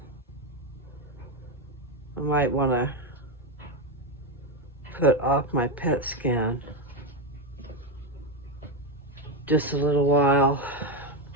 I might want to put off my PET scan just a little while.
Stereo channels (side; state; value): both; normal; correlation 0.08